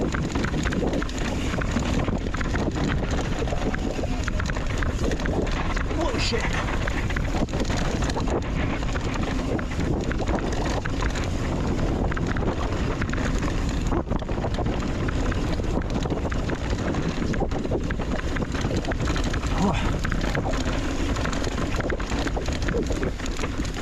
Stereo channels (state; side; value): identical; both; correlation 1.00